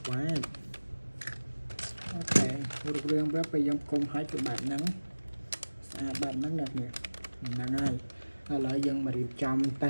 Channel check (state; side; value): inverted; both; correlation -1.00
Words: ok được riêng với bây giờ cùng hai cái bạn nắng bạn nắng đẹp nhỉ nắng ai lại dân mà đi trong